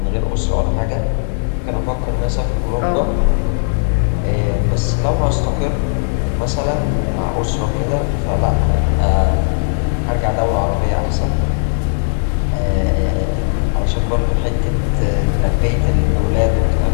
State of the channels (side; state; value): right; silent; digital silence